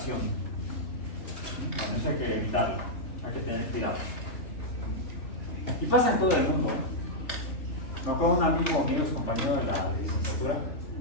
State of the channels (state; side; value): late; right; 3.3 ms